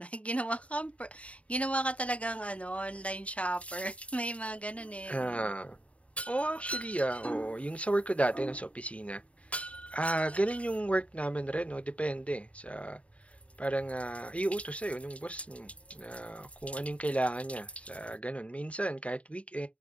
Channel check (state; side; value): late; right; 0.065 ms